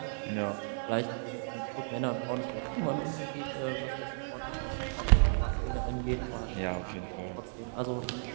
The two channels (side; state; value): left; silent; digital silence